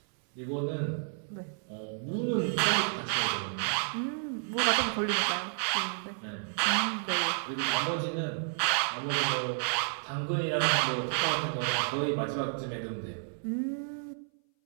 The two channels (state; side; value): silent; left; 57 dB below the other